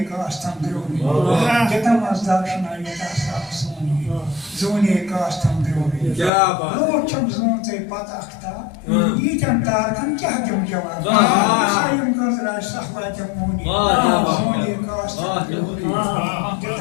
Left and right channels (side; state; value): right; drops out; at 6.3 s